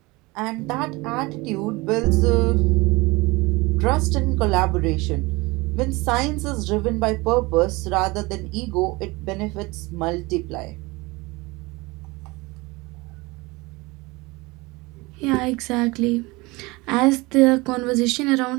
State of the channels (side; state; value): left; quieter; 23.5 dB